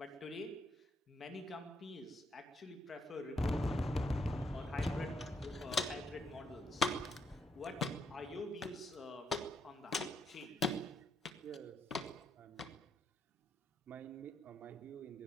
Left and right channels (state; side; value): normal; both; correlation 0.77